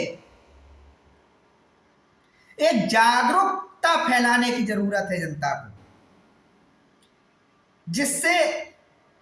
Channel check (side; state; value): both; identical; correlation 1.00